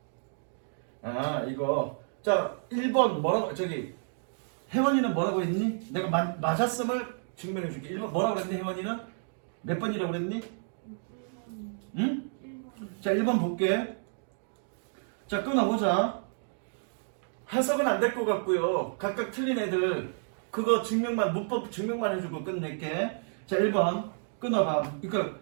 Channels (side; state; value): left; silent; digital silence